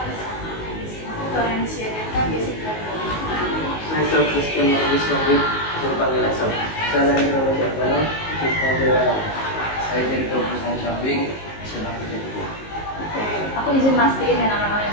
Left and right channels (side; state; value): right; late; 19 ms